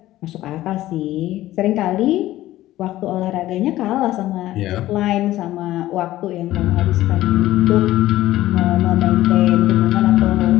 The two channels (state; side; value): quieter; right; 15.2 dB